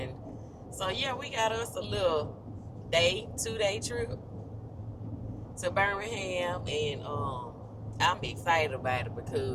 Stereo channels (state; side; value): identical; both; correlation 1.00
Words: so yeah, we got us a little 2-day trip to Birmingham, and I'm excited about it